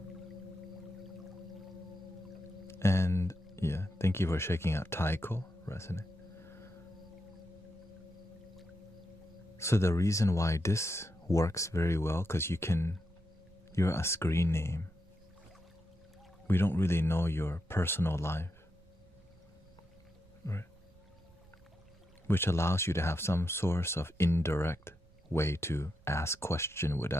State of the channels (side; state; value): right; noise; rumble, 27 dB below the sound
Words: And yeah, thank you for checking out Taiko, Resonate. So the reason why this works very well, because you're a screen name. We don't really know your personal life, right? Which allows you to have some source of indirect way to ask question